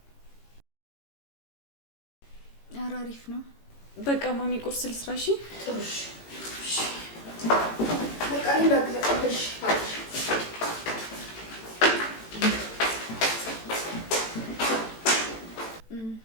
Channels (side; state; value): right; late; 18 ms